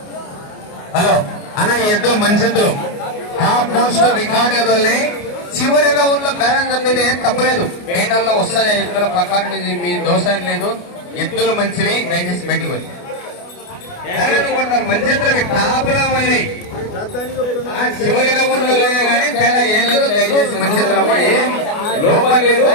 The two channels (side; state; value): right; late; 29 ms